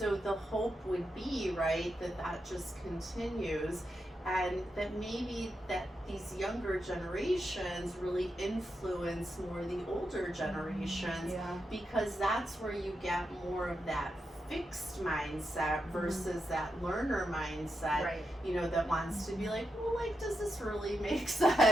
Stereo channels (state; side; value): normal; both; correlation 0.86